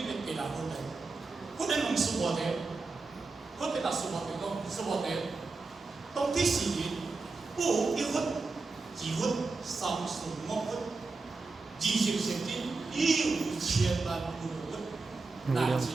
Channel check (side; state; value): left; quieter; 3.9 dB